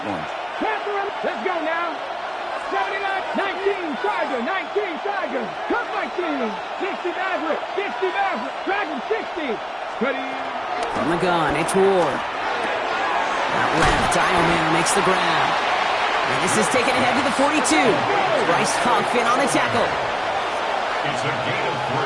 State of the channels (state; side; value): identical; both; correlation 1.00